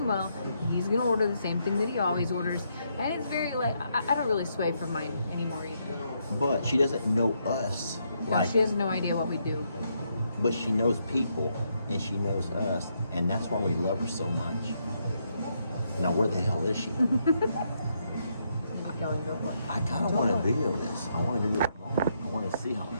well, he's going to order the same thing that he always orders. And it's very like, I don't really sway from mine anymore either. But she doesn't know us. No, she has no idea what we do. But she knows people, and she knows us, and that's why we love her so much. Now, where the hell is she? Going to work. I kind of want to video this. I want to do it wrong. I want to see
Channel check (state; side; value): inverted; both; correlation -0.77